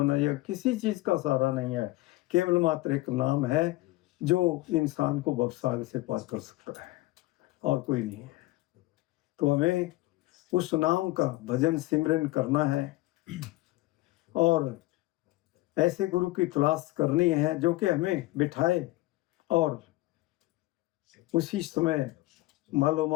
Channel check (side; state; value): right; quieter; 19.0 dB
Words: या किसी चीज का सहारा नहीं है। केवल मात्र एक नाम है जो इंसान को भवसागर से पार कर सकता है, और कोई नहीं है। तो हमें उस नाम का भजन सिमरन करना है और ऐसे गुरु की तलाश करनी है जो कि हमें बिठाए और उसी समय मालो